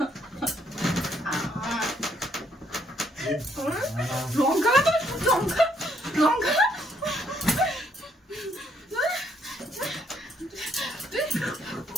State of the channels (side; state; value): both; normal; correlation 0.70